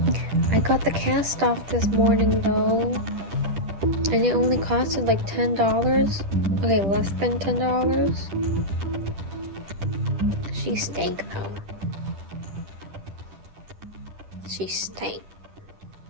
I got the cast off this morning though, and it only costed like $10. Okay, less than $10. She stank though. She stank.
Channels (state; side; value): late; left; 10 ms